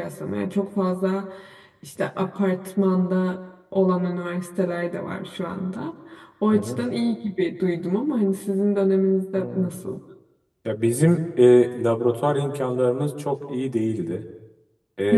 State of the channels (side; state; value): both; identical; correlation 1.00